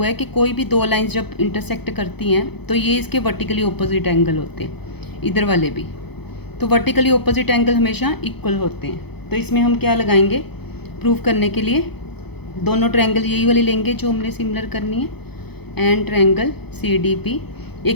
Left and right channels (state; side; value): late; right; 0.98 ms